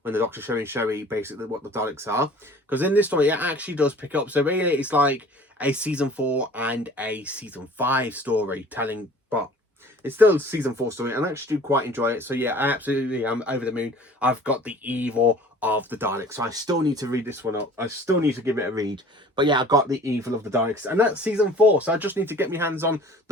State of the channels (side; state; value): both; normal; correlation 0.47